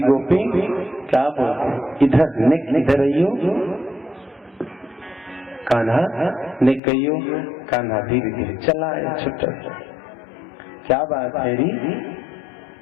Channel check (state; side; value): drops out; right; at 6.8 s